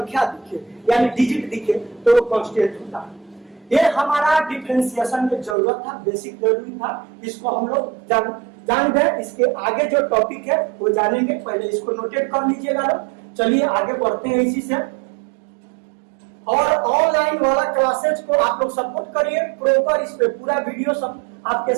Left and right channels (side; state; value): left; drops out; at 5.6 s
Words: दिखे, यानी डिजिट दिखे, तो वो कांस्टेंट होता है। ये हमारा डिफरेंशिएशन में जरूरत था, बेसिक जरूरी था, इसको हम लोग जान गए। इसके आगे जो टॉपिक है वो जानेंगे, पहले इसको नोटेट कर लीजिएगा लोग। चलिए आगे बढ़ते हैं इसी से। और ऑनलाइन वाला क्लासेज को आप लोग सपोर्ट करिए प्रॉपर, इस पे पूरा वीडियो सब आपके